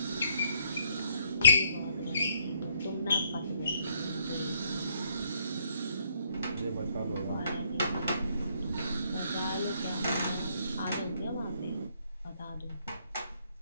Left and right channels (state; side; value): inverted; both; correlation -0.71